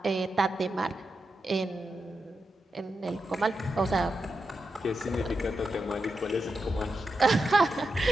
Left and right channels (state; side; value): normal; both; correlation 0.88